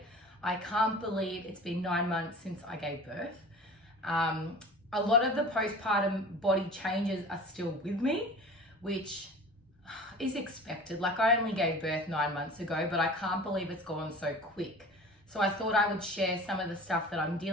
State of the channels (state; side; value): normal; both; correlation 0.39